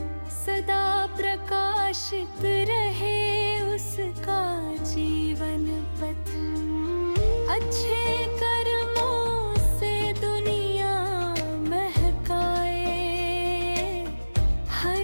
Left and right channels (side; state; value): both; inverted; correlation -1.00